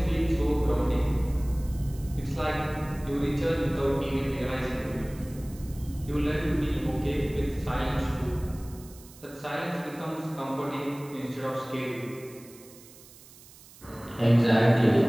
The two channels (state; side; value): noise; right; hiss, 22 dB below the sound